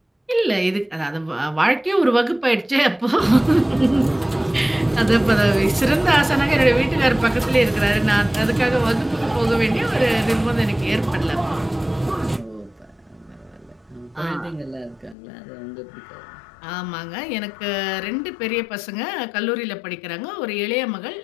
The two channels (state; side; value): drops out; right; at 15.2 s